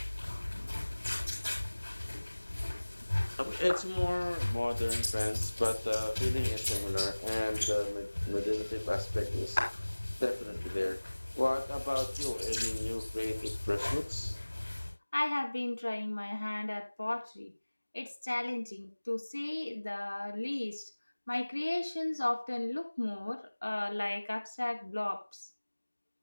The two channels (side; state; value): both; inverted; correlation -1.00